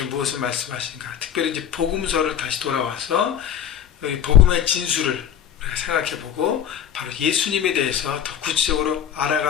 무엇을 말씀하신가? 특별히 이제 복음서를 다시 돌아와서 복음의 진수를 우리가 생각해보고 바로 예수님에 대해서 더 구체적으로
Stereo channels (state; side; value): quieter; right; 9.3 dB